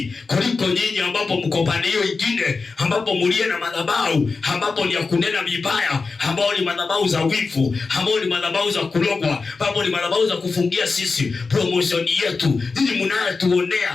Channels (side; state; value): right; quieter; 4.3 dB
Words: kuliko nyinyi ambapo mko upande hiyo nyingine, ambapo mulie na madhabahu, ambapo ni ya kunena vibaya, ambao ni madhabahu za wivu, ambao ni madhabahu za kulogwa, ambao ni madhabahu za kufungia sisi promotion yetu. Ninyi